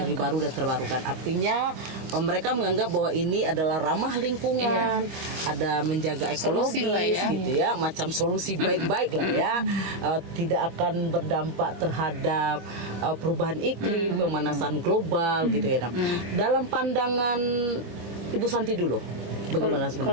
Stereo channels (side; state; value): left; late; 25 ms